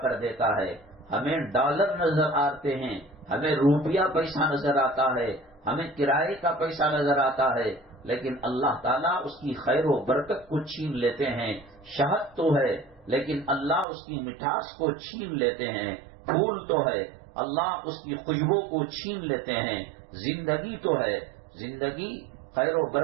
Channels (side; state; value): left; drops out; at 13.9 s